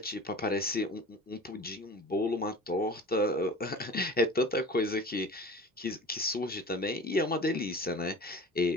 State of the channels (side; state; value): both; normal; correlation 0.39